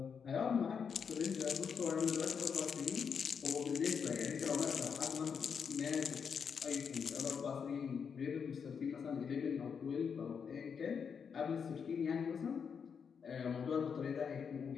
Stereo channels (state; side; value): quieter; right; 6.6 dB